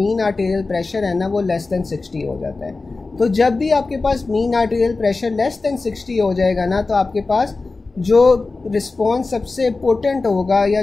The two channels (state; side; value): quieter; right; 3.7 dB